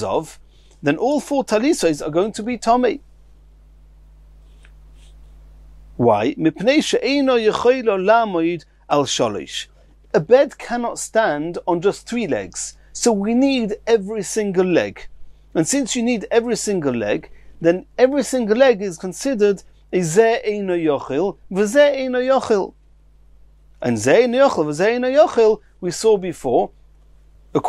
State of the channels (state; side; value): identical; both; correlation 1.00